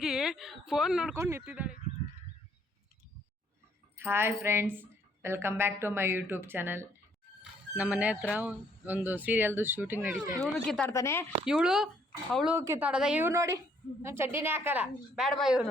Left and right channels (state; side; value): normal; both; correlation 0.66